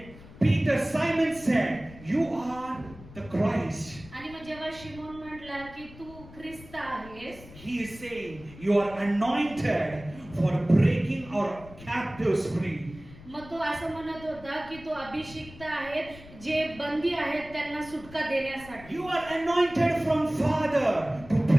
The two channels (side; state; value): left; noise; rumble, 18 dB below the sound